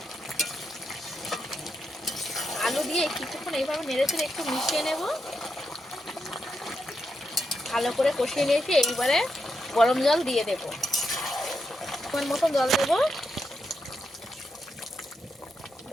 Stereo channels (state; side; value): normal; both; correlation 0.84